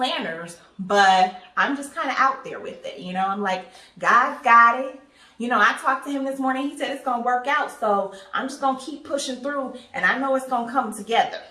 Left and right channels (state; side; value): identical; both; correlation 1.00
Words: but I'm just kind of out there with it. You know, I'm like, God's got it. You know, I talked to him this morning. He said it's going to work out. So I'm just going to keep pushing through, and I know it's going to come together.